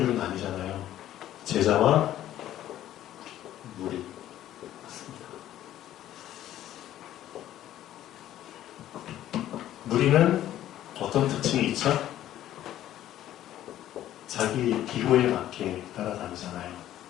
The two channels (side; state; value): right; quieter; 12.7 dB